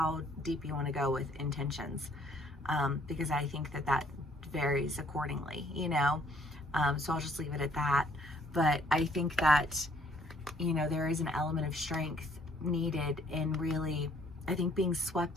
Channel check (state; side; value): normal; both; correlation 0.63